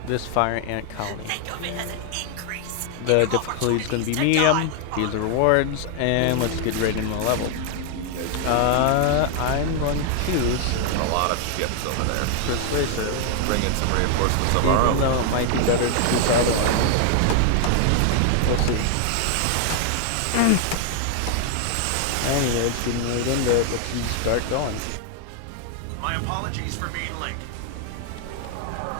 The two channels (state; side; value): different; both; correlation 0.00